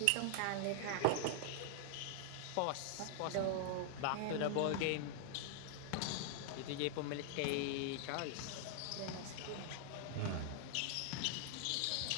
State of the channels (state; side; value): different; both; correlation 0.00